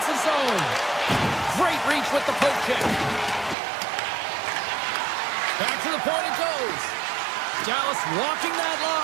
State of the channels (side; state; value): left; drops out; at 3.6 s